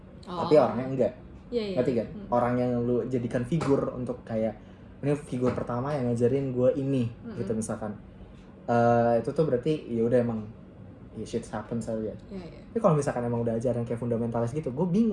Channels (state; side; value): identical; both; correlation 1.00